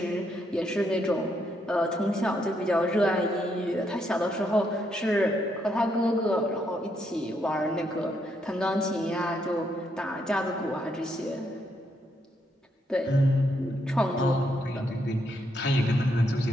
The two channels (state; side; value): normal; both; correlation 0.76